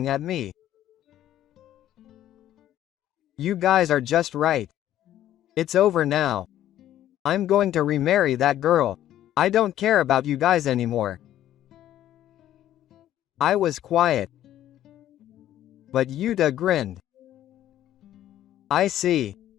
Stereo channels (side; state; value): right; quieter; 12.3 dB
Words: at me. You guys are just right. It's over now. I'm going to remarry that girl. I don't care about you guys anymore. I was quiet. But Yuta grinned. I see.